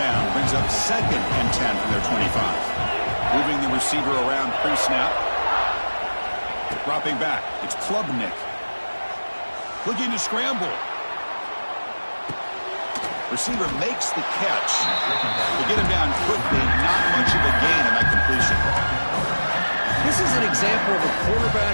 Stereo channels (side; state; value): both; inverted; correlation -1.00